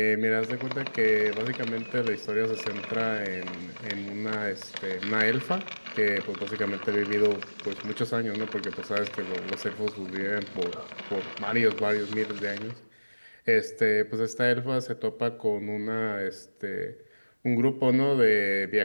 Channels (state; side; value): inverted; both; correlation -1.00